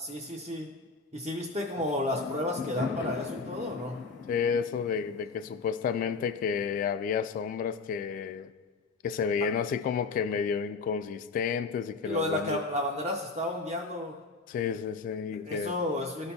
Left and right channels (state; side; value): quieter; right; 4.3 dB